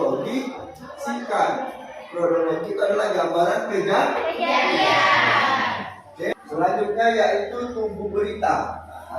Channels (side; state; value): both; identical; correlation 1.00